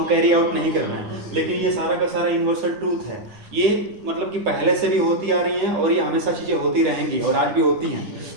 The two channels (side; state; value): left; late; 9.7 ms